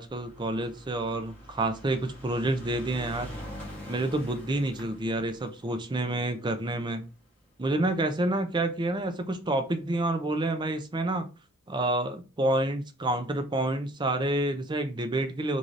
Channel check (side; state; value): both; normal; correlation 0.56